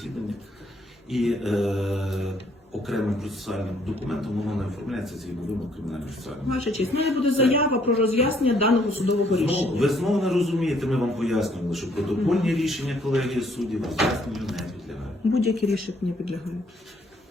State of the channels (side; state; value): both; normal; correlation 0.66